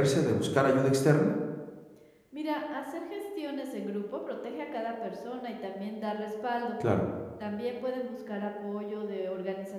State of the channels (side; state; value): both; identical; correlation 1.00